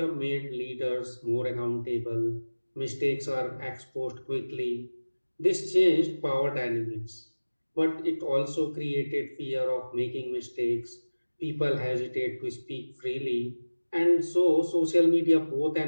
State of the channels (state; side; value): inverted; both; correlation -1.00